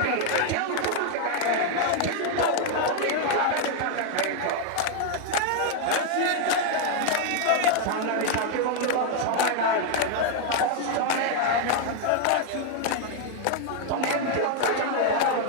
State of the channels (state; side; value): different; both; correlation 0.00